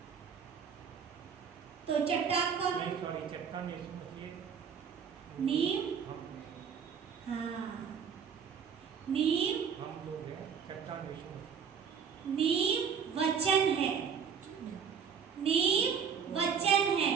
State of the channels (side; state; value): left; quieter; 7.0 dB